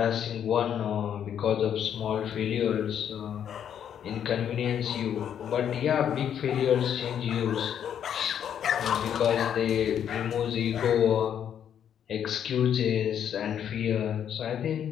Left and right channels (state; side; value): quieter; right; 9.1 dB